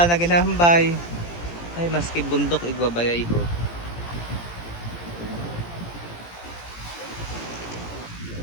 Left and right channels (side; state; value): right; late; 17 ms